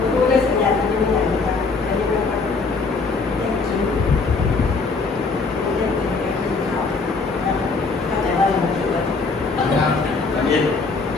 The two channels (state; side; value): quieter; right; 4.2 dB